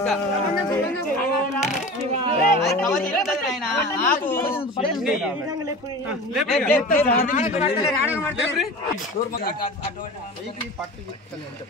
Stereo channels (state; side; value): normal; both; correlation 0.34